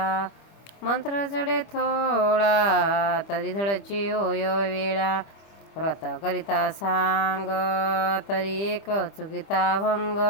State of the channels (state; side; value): late; right; 25 ms